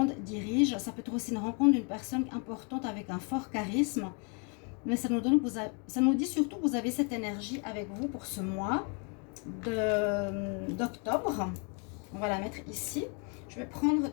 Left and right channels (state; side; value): quieter; right; 36.8 dB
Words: dirige. Ça peut être aussi une rencontre d'une personne importante avec un fort charisme. Mais ça nous dit surtout que vous avez cette énergie avec vous pour ce mois d'octobre. On va la mettre ici. Je vais prendre